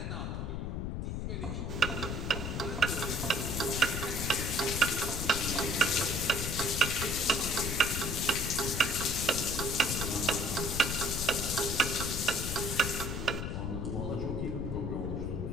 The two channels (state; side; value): noise; left; rumble, 3 dB below the sound